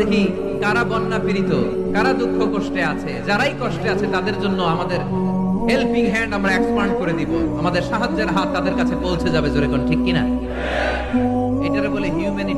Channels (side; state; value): both; identical; correlation 1.00